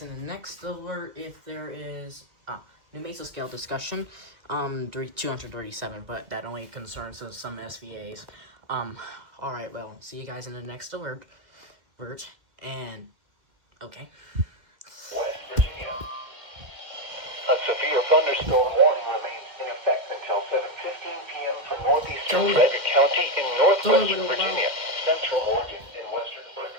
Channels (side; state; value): left; late; 2.1 ms